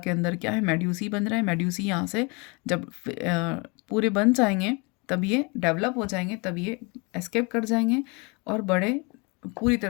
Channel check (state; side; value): quieter; right; 29.9 dB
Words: अंदर क्या है, मेड्यूसी बन रहा है। मेड्यूसी यहाँ से जब पूरे बन जाएंगे तब ये डेवलप हो जाएंगे, तब ये एस्केप कर जाएंगे और बड़े पूरी